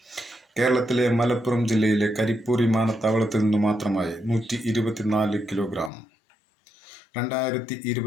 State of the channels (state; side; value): drops out; right; at 5.9 s